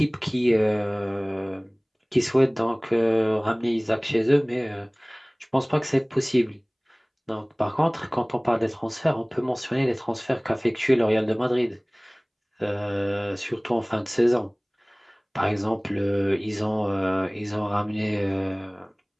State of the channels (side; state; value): both; identical; correlation 1.00